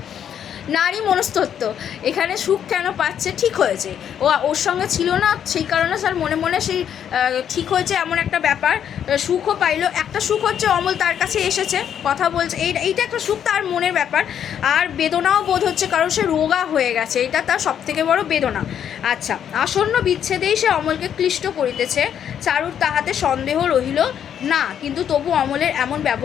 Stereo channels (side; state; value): right; quieter; 9.1 dB